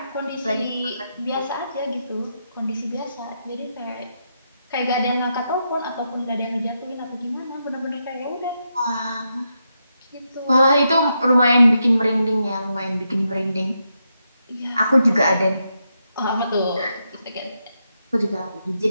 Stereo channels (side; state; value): both; inverted; correlation -0.83